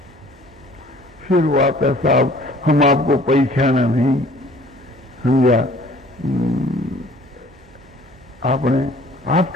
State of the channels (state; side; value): normal; both; correlation 0.53